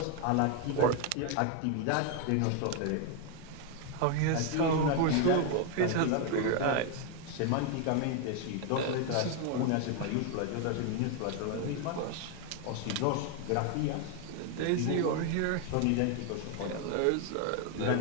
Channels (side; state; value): both; different; correlation 0.01